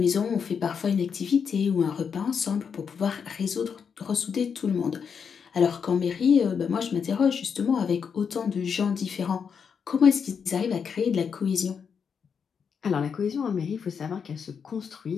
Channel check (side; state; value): right; quieter; 6.6 dB